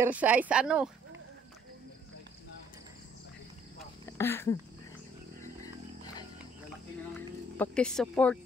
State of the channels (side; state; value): both; normal; correlation 0.63